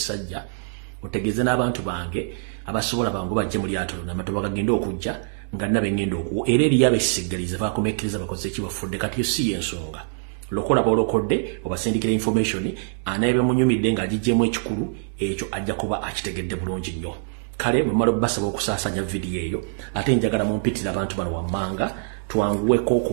otegeeze n'abantu bange abasobola bangu bajje mu lyato lonna amatoba gagenda okujja nga nabe ngenda okuwa era eriyo abeesigaliza baakomekkiriza bakoze ekibafudde kati si yensonga lokola bolokodde obasindikira information anaebe munyumidde ng'agijjemu ekikulu ekyo ajja kuba akitegedde bulungi nnyo kale bwe mmala basaba okusaasanya vidiyo eyo ate njagala mumpitira abantu bano wammanga twanguweko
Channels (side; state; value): left; silent; digital silence